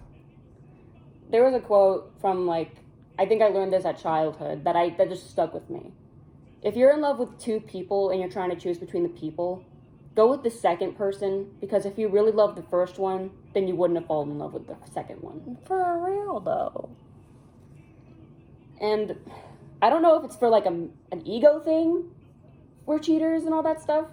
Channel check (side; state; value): both; identical; correlation 1.00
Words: There was a quote from I think I learned this at childhood that just stuck with me. If you're in love with two people and you're trying to choose between the people, go with the second person, because if you really love the first one, then you wouldn't have fallen in love with the second one. For real though. And I don't know if it's for, like, an ego thing. We're cheaters and all that stuff.